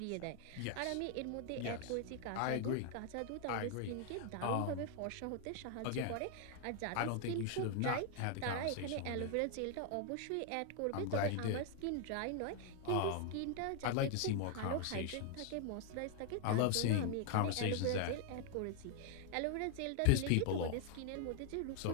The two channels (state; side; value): different; both; correlation 0.00